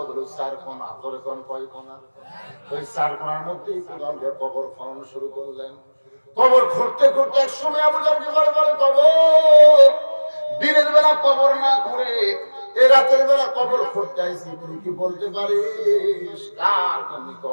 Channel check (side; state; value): both; inverted; correlation -1.00